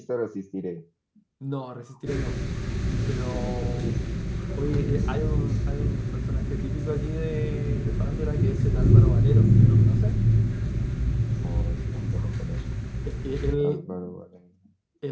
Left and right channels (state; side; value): identical; both; correlation 1.00